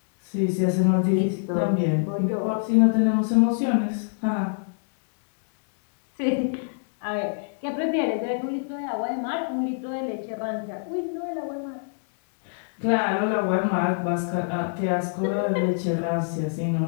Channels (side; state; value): right; silent; digital silence